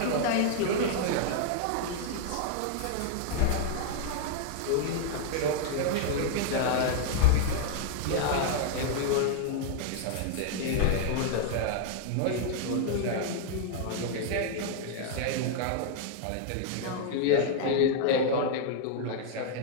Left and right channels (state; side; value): different; both; correlation -0.01